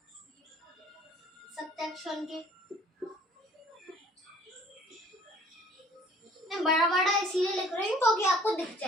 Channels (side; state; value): both; normal; correlation 0.55